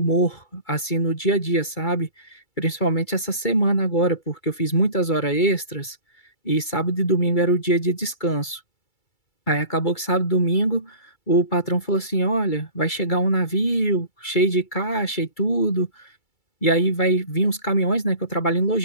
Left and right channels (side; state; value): right; late; 2.3 ms